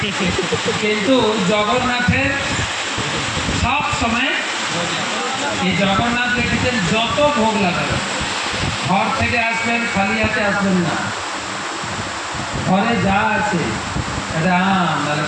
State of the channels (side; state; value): both; identical; correlation 1.00